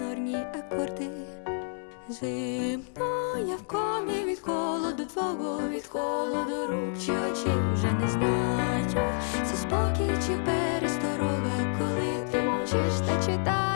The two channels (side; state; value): right; silent; 59 dB below the other